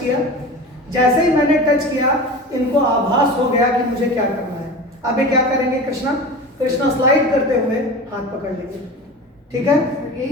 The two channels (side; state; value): both; normal; correlation 0.32